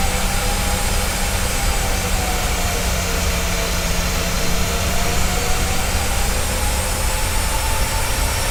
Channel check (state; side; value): identical; both; correlation 1.00